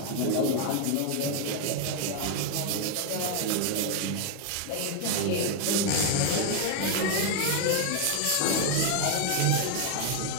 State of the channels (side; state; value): both; different; correlation 0.01